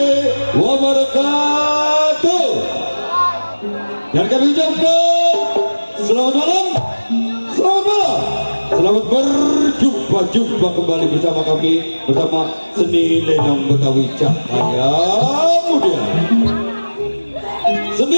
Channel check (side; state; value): both; inverted; correlation -1.00